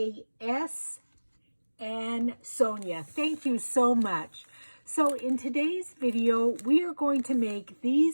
and Sonia. Thank you so much. So in today's video, we are going to make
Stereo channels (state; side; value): inverted; both; correlation -1.00